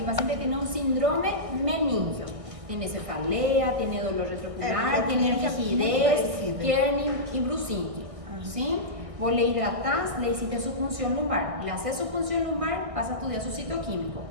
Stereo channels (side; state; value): left; late; 1.6 ms